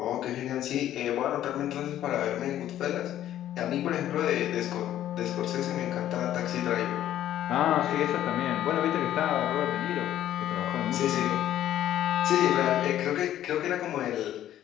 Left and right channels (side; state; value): right; quieter; 12.1 dB